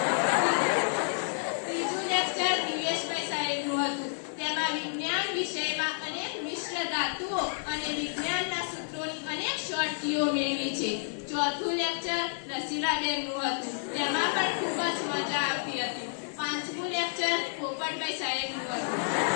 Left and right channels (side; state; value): right; silent; digital silence